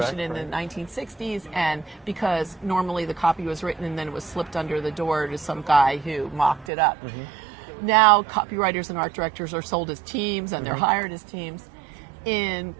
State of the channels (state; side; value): drops out; left; at 6.7 s